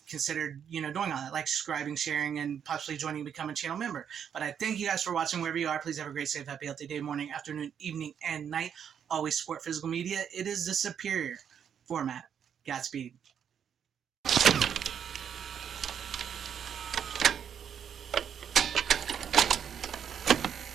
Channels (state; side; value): quieter; left; 8.2 dB